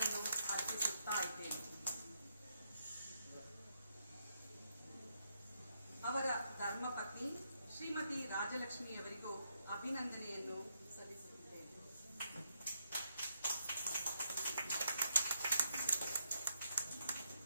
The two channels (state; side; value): inverted; both; correlation -0.78